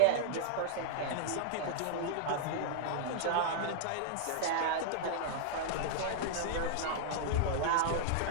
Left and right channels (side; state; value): both; different; correlation -0.01